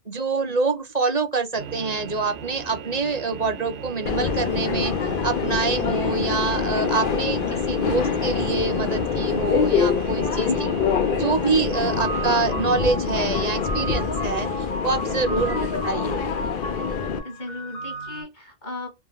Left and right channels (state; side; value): late; right; 1.9 ms